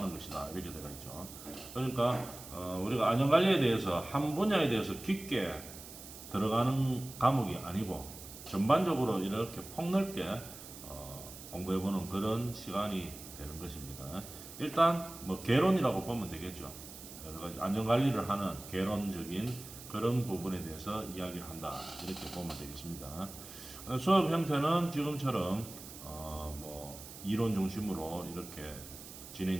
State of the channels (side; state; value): right; noise; hiss, 14 dB below the sound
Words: 것이다, 이렇게 되어 있죠. 그러니까 우리가 안전관리에 대해서 한 분야에 대해서 깊게 들어가는 과목이 아니고 전반적으로 이렇게 폭넓게 공부해보는 그런 시간이 되는 것입니다. 일단 뭐 개론이라고 보면 되겠죠. 여러 가지 안전관리를 하는 개론적인 그런 부분에 대해서 이야기를 한다, 이렇게 보면 되겠습니다. 수업 형태는 지금처럼 이론 중심으로 이렇게